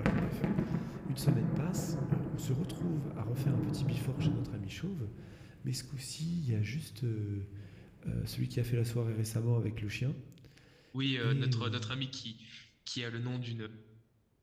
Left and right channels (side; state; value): both; identical; correlation 1.00